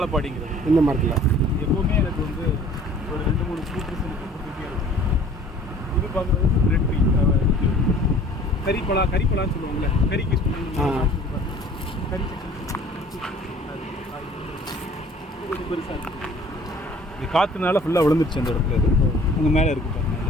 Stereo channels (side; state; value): both; normal; correlation 0.51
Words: இந்த மரத்தில் எப்போவுமே எனக்கு வந்து ஒரு 2-3 ஃப்ரூட்ஸ் எனக்கு கொடுத்துட்டே இருக்கும். இது பார்க்குறது ரெட் ட்ரீ, கறிப்பழான்னு சொல்லுவாங்கள்ல, கறிக்கு கறி கொஞ்சம் பெருசாக இருக்குது. இது காற்றுனால ஃபுல்லாக விழுந்துருச்சு அந்த இடத்துல. இது உங்கள் மேலே இருக்குது பாருங்கள்,